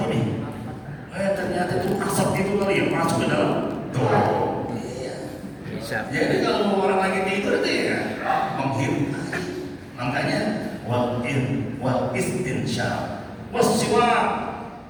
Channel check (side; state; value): both; identical; correlation 1.00